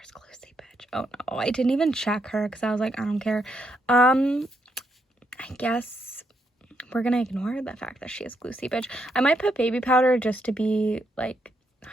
glue seepage. Oh no, I didn't even check her because I was like, I don't care. I guess we're gonna ignore the fact that she has glue seepage. I might put baby powder just to be like,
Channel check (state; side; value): normal; both; correlation 0.77